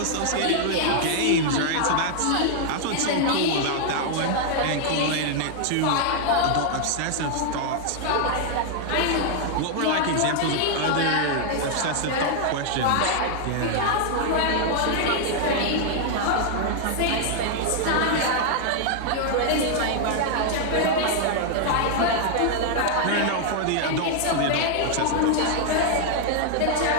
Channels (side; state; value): both; different; correlation 0.00